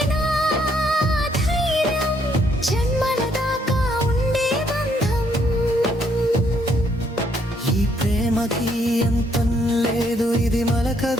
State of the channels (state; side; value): normal; both; correlation 0.70